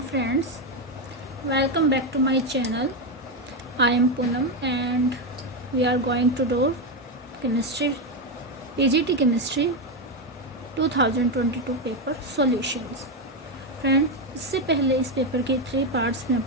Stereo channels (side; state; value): both; normal; correlation 0.08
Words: friends. Welcome back to my channel. I am Poonam and we are going to do chemistry, PGT chemistry 2022 paper solutions. Friends, इससे पहले इस paper के 3 parts में